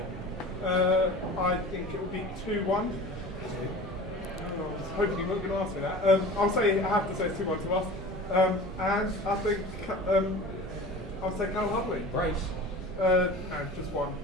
I think it will be 2-1. I was hoping you weren't going to ask me that. I have to say it's 2-1 to us. And I think I'll say Carl Hudlin. Brace. No, just one.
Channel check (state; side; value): normal; both; correlation 0.38